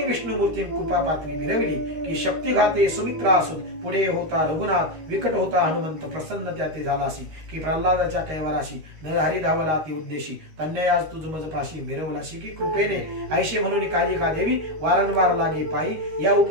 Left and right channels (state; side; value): late; left; 13 ms